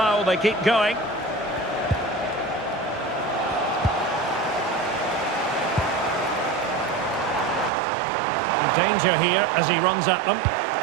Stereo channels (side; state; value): left; drops out; at 7.7 s